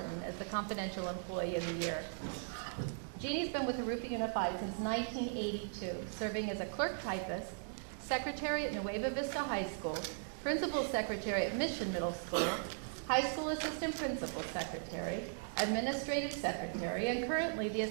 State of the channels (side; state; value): left; silent; digital silence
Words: as the confidential employee of the year. Jeannie's been with Jurupa Unified since 1982, serving as a clerk typist, secretary at Nueva Vista High School, principal secretary at Mission Middle School, high school assistant principal secretary, administrative secretary, and currently the